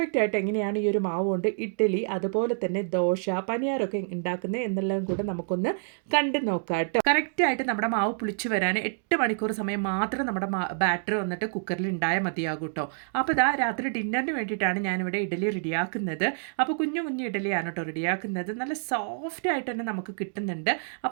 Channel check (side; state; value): left; silent; digital silence